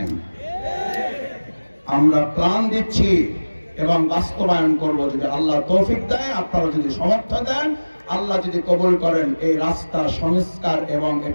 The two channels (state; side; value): inverted; both; correlation -1.00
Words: আমরা প্ল্যান দিচ্ছি এবং বাস্তবায়ন করব যদি আল্লাহ তৌফিক দেয়, আপনারা যদি সমর্থন দেন, আল্লাহ যদি কবুল করেন, এই রাস্তা সংস্কার এবং